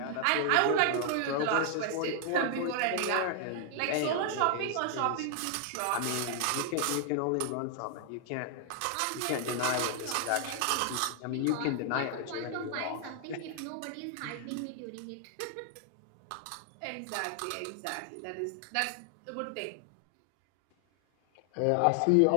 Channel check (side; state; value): both; different; correlation 0.00